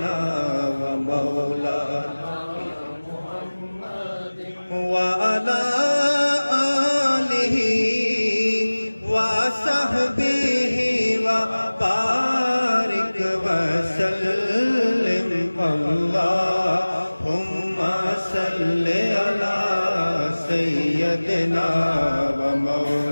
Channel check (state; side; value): inverted; both; correlation -1.00